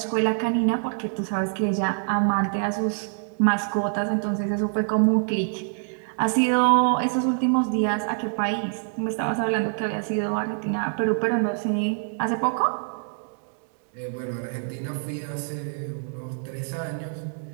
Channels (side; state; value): left; silent; digital silence